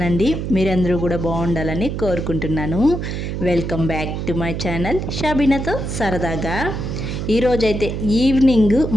మీరందరూ కూడా బాగుండాలని కోరుకుంటున్నాను. Welcome back to my channel షబీనాతో సరదాగా. ఈరోజైతే ఈవినింగ్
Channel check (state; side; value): noise; right; hum, 4 dB below the sound